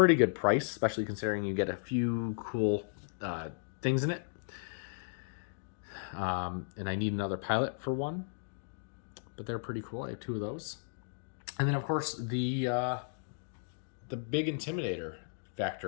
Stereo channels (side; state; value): right; silent; digital silence